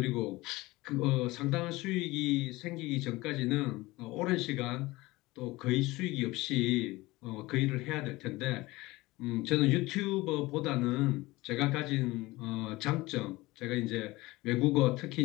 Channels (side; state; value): right; quieter; 20.5 dB